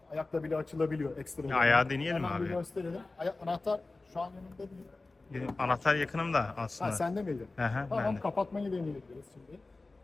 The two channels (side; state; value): right; quieter; 3.3 dB